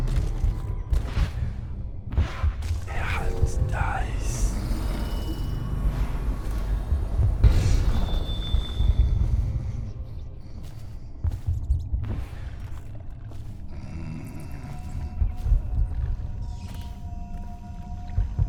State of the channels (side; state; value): both; identical; correlation 1.00